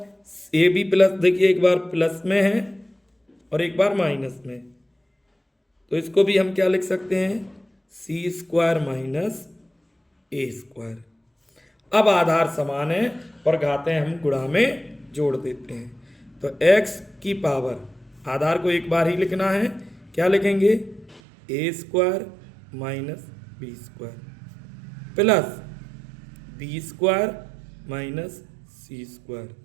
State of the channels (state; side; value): drops out; left; at 21.2 s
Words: a भी प्लस, देखिए एक बार प्लस में है और एक बार माइनस में, तो इसको भी हम क्या लिख सकते हैं, c square minus a square. अब आधार समान है और घातें हम गुणा में जोड़ देते हैं, तो x की पावर, आधार को एक बार ही लिखना है, क्या लिखेंगे, a square minus b square plus b square minus c square